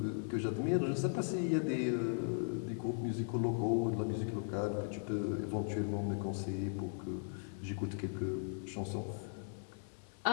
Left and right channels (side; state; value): right; silent; 52 dB below the other